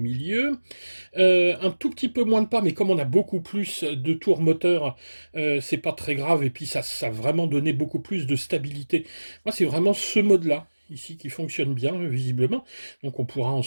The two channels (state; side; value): inverted; both; correlation -1.00